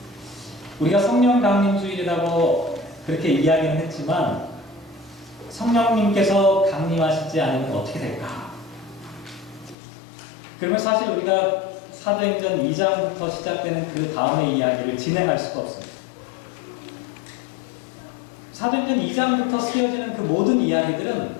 우리가 성령 강림 주일이라고 그렇게 이야기는 했지만 성령님께서 강림하시지 않으면 어떻게 될까? 그러면 사실 우리가 사도행전 2장부터 시작되는 그 다음의 이야기를 진행할 수가 없습니다. 사도행전 2장부터 쓰여지는 그 모든 이야기들은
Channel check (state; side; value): drops out; right; at 9.8 s